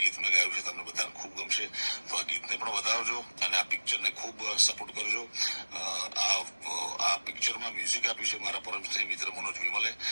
ગીત મેં ગાયું છે, તમને બધાને ખૂબ ગમશે, તો આ ગીતને પણ વધાવજો અને આ પિક્ચરને ખૂબ સપોર્ટ કરજો। આ પિક્ચરમાં મ્યુઝિક આપ્યું છે મારા પરમ સ્નેહી મિત્ર મનોજ વિમલે,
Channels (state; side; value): inverted; both; correlation -1.00